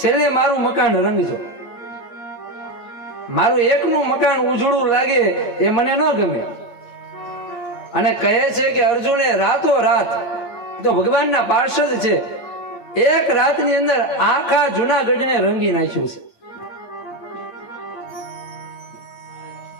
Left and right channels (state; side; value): late; right; 8.7 ms